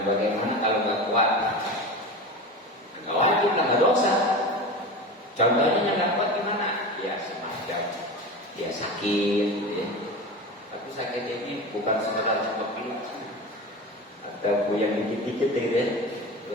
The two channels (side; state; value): both; normal; correlation 0.28